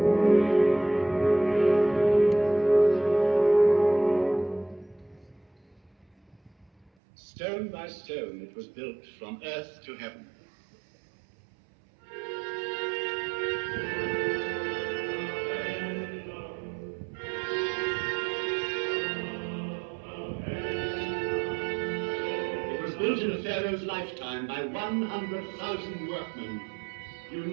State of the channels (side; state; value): left; drops out; at 6.9 s